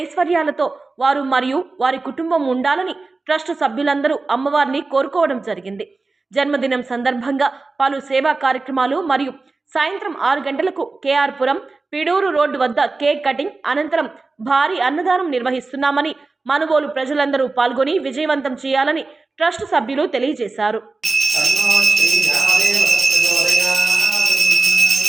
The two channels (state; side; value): quieter; left; 3.7 dB